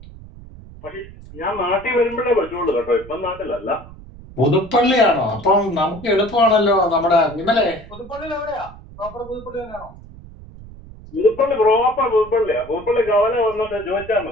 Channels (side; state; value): right; noise; rumble, 18 dB below the sound